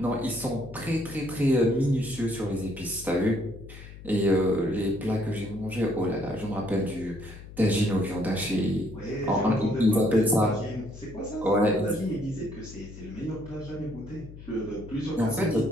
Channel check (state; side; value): noise; left; hum, 15 dB below the sound